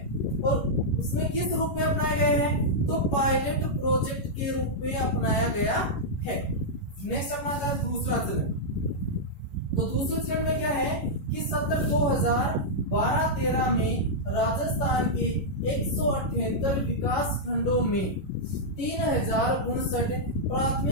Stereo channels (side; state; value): right; late; 11 ms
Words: और उसमें किस रूप में अपनाया गया है, तो पायलट प्रोजेक्ट के रूप में अपनाया गया है। नेक्स्ट अपना है दूसरा चरण। तो दूसरे चरण में क्या है कि सत्र 2012-13 में राजस्थान के 178 विकास खंडों में 3059